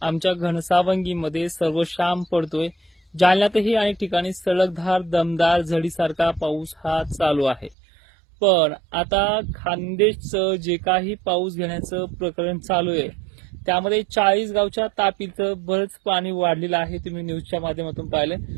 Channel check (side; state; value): left; drops out; at 7.8 s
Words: आमच्या घनसावंगीमध्ये सर्वशाम पडतोय। जालन्यातही अनेक ठिकाणी सलगधार दमदार झडीसारखा पाऊस हा चालू आहे। पण आता खानदेशचं जे काही पाऊस घेण्याचं प्रकरण चालू आहे त्यामध्ये 40 गावच्या तापीचं बरंच पाणी वाढलेलं आहे। तुम्ही न्यूजच्या माध्यमातून पाहिलं।